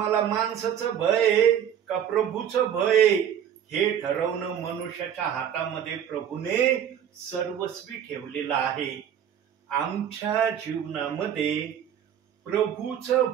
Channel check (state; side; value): quieter; left; 9.3 dB